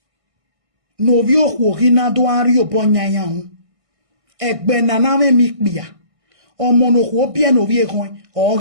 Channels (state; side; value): late; left; 1.6 ms